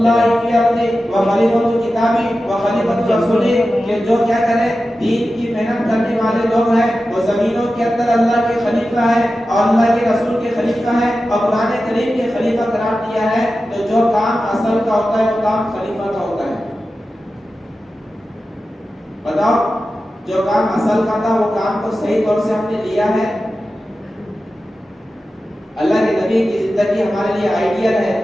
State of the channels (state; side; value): normal; both; correlation 0.93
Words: فی الارض وخلیفۃ کتابہ وخلیفۃ رسولہ، کہ جو کیا کرے دین کی محنت کرنے والے لوگ ہیں وہ زمینوں کے اندر اللہ کے خلیفہ ہیں اور اللہ کے رسول کے خلیفہ ہیں اور قرآن کریم کے خلیفہ قرار دیا ہے۔ تو جو کام اصل کا ہوتا ہے وہ کام خلیفہ کا ہوتا ہے۔ بتاؤ جو کام اصل کا تھا وہ کام کو صحیح طور سے ہم نے لیا ہے؟ اللہ کے نبی کی زندگی ہمارے لیے آئیڈیل ہے،